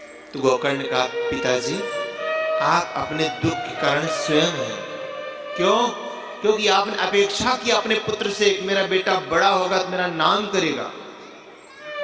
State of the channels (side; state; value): both; identical; correlation 1.00